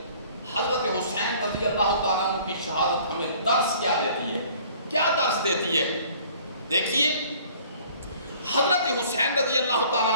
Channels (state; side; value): inverted; both; correlation -0.53